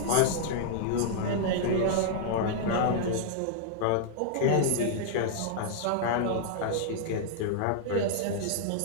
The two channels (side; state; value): both; different; correlation -0.01